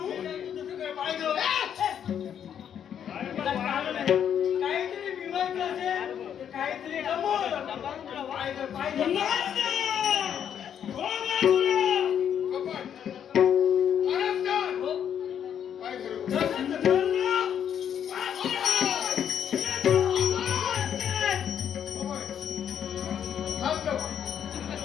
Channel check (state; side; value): quieter; right; 8.9 dB